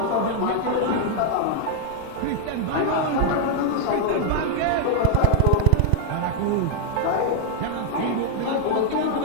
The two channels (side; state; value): both; different; correlation 0.00